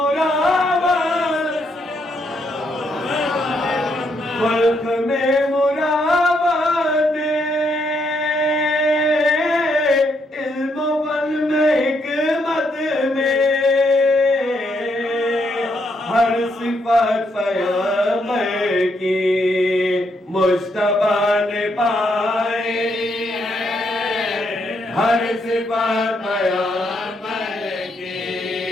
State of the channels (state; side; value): normal; both; correlation 0.76